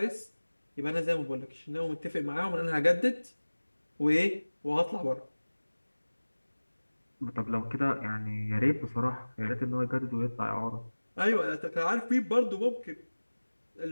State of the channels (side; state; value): both; inverted; correlation -1.00